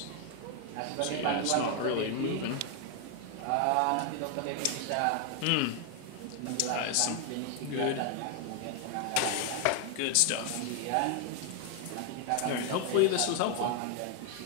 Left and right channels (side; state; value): both; different; correlation 0.01